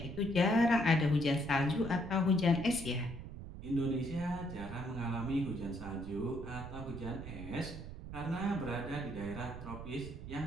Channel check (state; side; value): noise; right; rumble, 10 dB below the sound